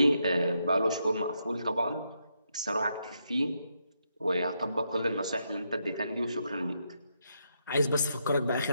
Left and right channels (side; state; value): both; inverted; correlation -0.80